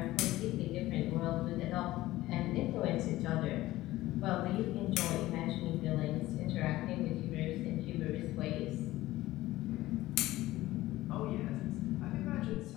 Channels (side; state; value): right; quieter; 16.7 dB